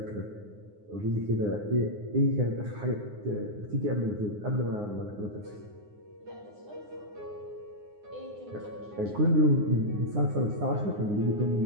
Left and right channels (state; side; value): late; left; 9.7 ms